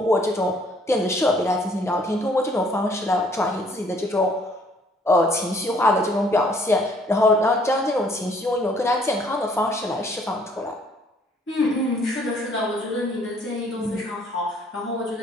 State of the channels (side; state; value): both; normal; correlation 0.61